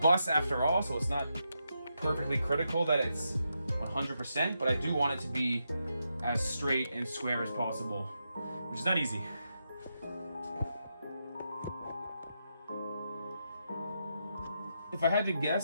after all, so it's not perfectly critical that it's 100%, but I do want it to be as straight and square as possible, which is not easy. If I had to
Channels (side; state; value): both; inverted; correlation -0.84